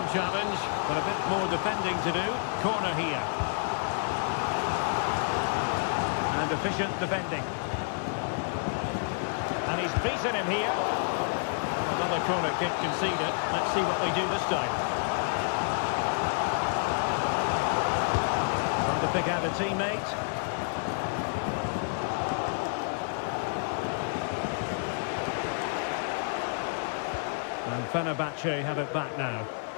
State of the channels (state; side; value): silent; right; 58 dB below the other